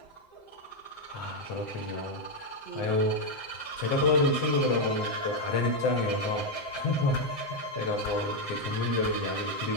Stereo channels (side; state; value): right; late; 7.8 ms